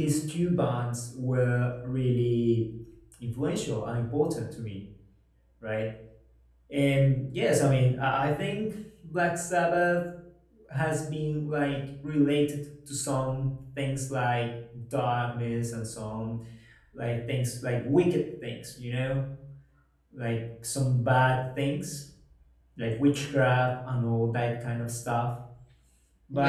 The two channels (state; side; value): identical; both; correlation 1.00